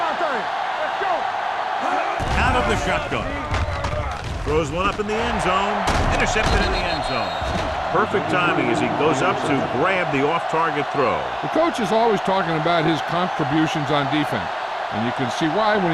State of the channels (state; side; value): identical; both; correlation 1.00